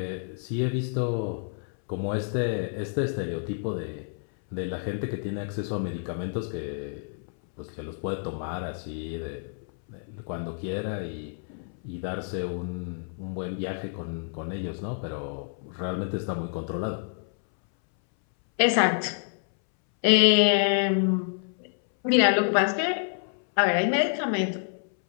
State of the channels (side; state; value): right; silent; 59 dB below the other